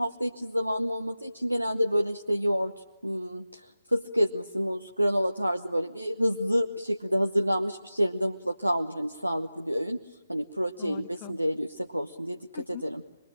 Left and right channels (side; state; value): both; inverted; correlation -0.95